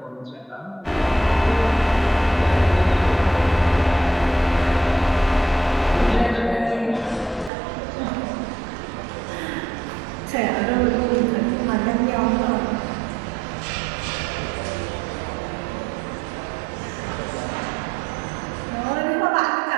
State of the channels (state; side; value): drops out; left; at 7.5 s